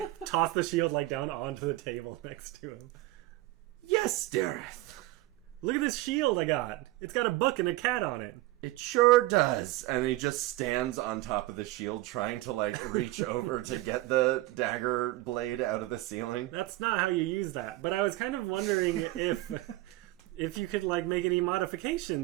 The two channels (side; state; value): left; quieter; 17.9 dB